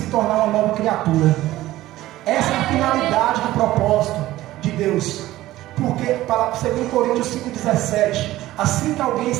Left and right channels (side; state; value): left; quieter; 15.8 dB